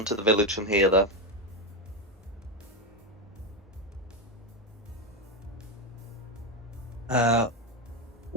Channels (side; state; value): both; normal; correlation 0.11